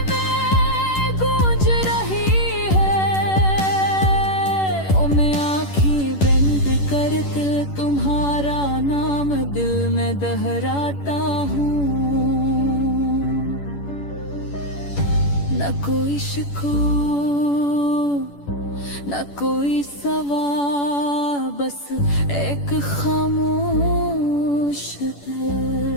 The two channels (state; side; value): late; right; 10 ms